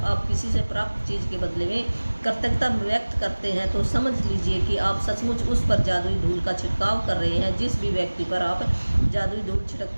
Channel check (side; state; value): both; inverted; correlation -1.00